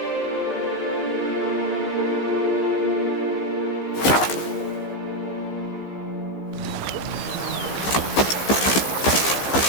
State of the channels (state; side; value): late; right; 15 ms